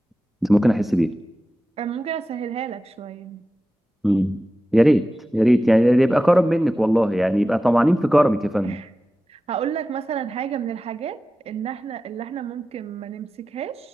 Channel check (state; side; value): normal; both; correlation 0.95